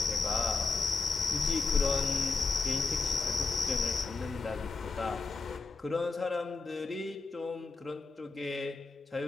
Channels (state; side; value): quieter; right; 4.1 dB